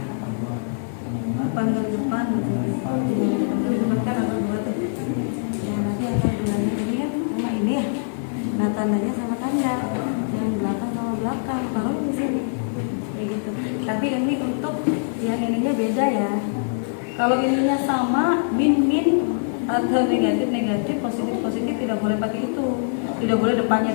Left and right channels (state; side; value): silent; right; digital silence